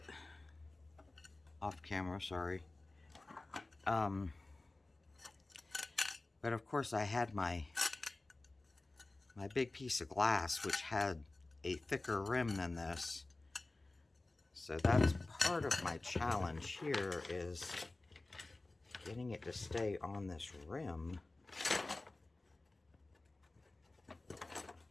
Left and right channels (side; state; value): right; quieter; 3.0 dB